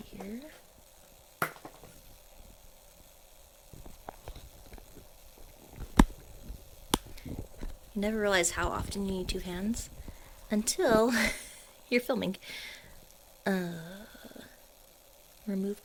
You never realize how often you need two hands until you're filming. Remove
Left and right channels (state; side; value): identical; both; correlation 1.00